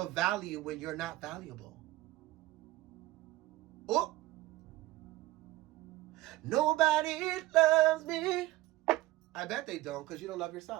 value when you're not valuable. Oh, nobody loves me. I bet they don't, because you don't love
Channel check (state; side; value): quieter; left; 17.7 dB